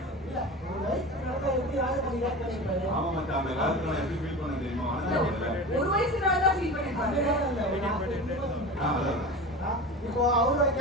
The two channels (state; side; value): normal; both; correlation 0.31